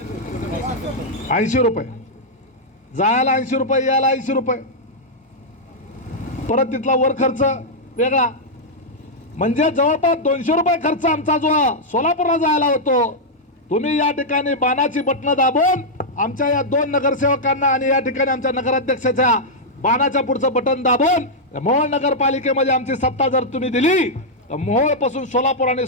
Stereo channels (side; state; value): both; normal; correlation -0.05